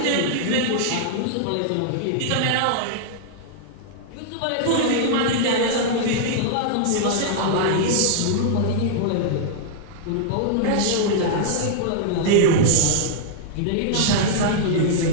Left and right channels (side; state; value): both; different; correlation -0.01